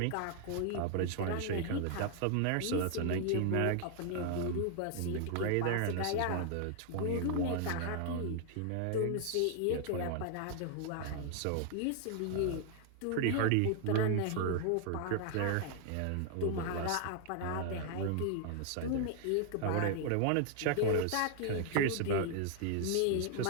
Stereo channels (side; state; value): both; different; correlation 0.00